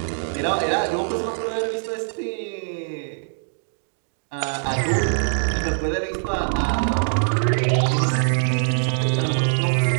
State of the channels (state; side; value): silent; left; digital silence